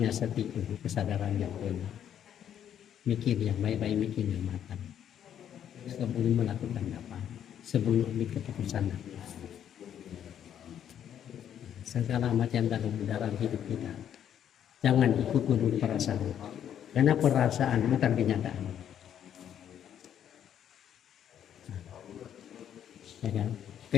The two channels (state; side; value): quieter; right; 9.7 dB